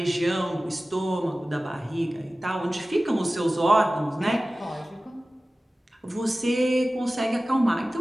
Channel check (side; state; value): both; normal; correlation 0.96